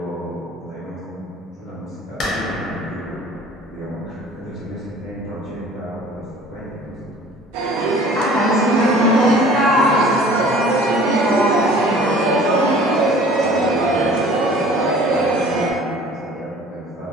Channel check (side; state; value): both; normal; correlation 0.48